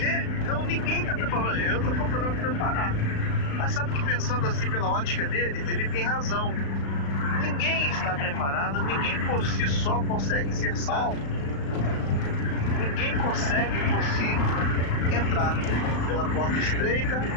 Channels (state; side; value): late; right; 35 ms